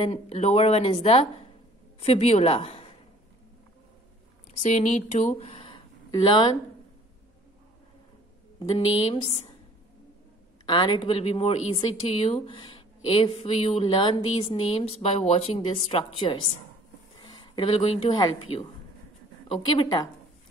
lower one is the fibula. So you need to learn the names, and it will be more easy to you if you learn these names by watching these structures. It will going to help you. Okay beta?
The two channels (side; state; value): both; normal; correlation 0.53